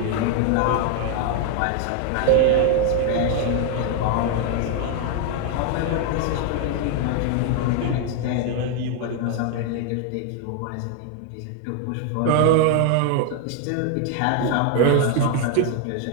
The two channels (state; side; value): different; both; correlation 0.00